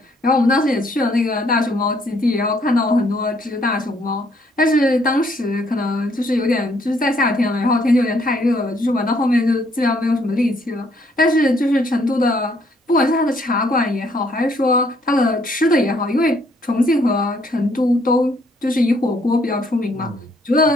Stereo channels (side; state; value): both; normal; correlation 0.67